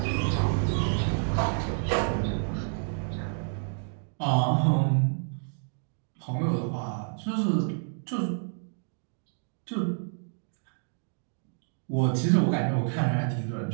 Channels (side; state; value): left; silent; digital silence